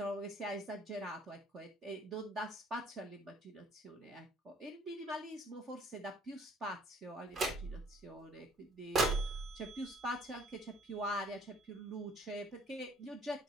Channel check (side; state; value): both; normal; correlation 0.58